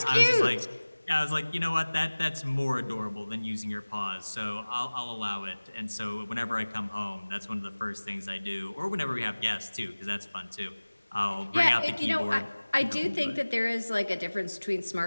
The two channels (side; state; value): both; inverted; correlation -1.00